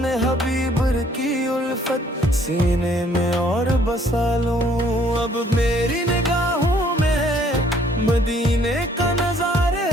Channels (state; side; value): normal; both; correlation 0.62